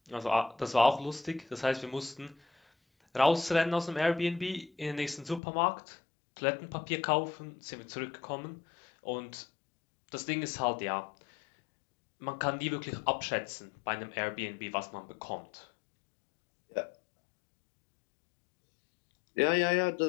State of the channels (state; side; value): drops out; right; at 5.4 s